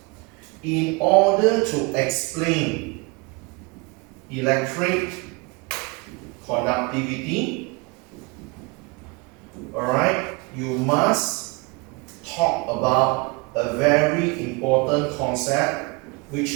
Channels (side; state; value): left; quieter; 28.4 dB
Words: In order to explain electric conductivity, alright, you must talk about a very important concept which